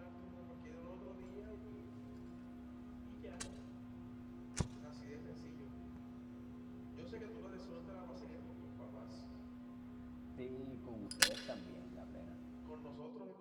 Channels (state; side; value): identical; both; correlation 1.00